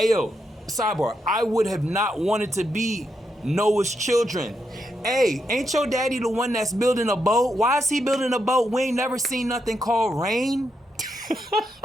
sidebar, I would have not wanted to be Noah's children. Hey, ain't your daddy the one that's building a boat? Why is he building a boat? We ain't never seen nothing called rain.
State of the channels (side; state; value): both; normal; correlation 0.82